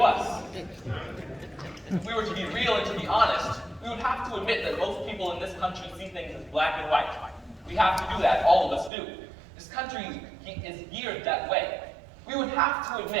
us. If we were to be real and to be honest, we would have to admit that most people in this country see things as black and white. We have to do that, all of us do. This country is geared that way. We would have to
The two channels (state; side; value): drops out; left; at 8.9 s